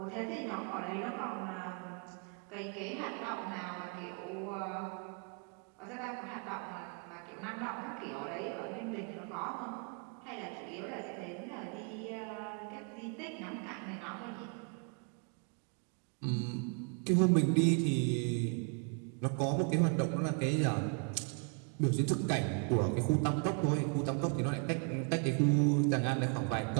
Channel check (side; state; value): left; quieter; 39.6 dB